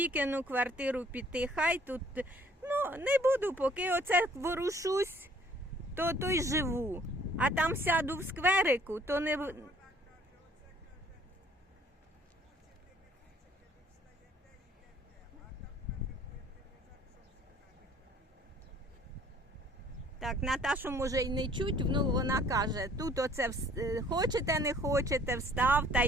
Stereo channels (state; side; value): normal; both; correlation 0.57